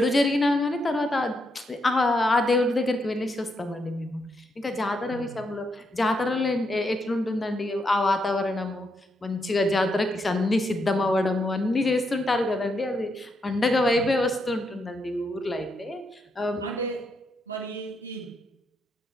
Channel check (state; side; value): normal; both; correlation 0.80